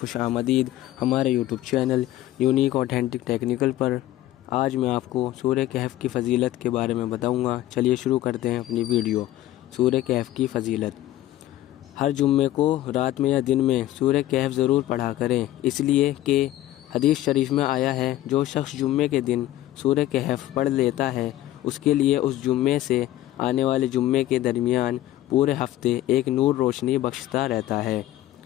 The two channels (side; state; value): right; quieter; 14.5 dB